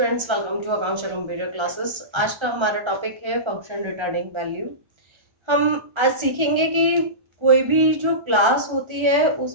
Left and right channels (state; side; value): late; left; 1.3 ms